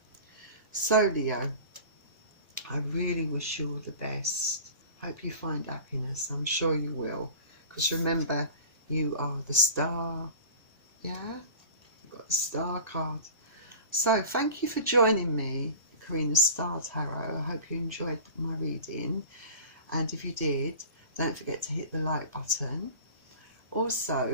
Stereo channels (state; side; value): inverted; both; correlation -0.38